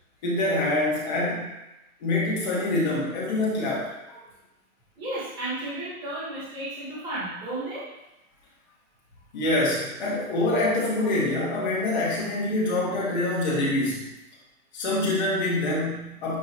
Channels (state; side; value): normal; both; correlation 0.14